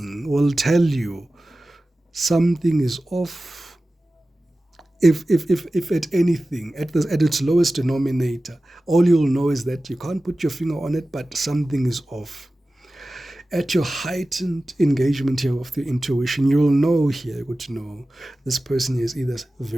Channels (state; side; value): normal; both; correlation 0.96